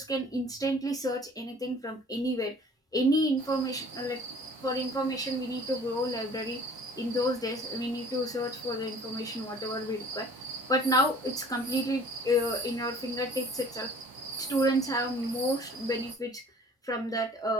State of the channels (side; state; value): both; normal; correlation 0.50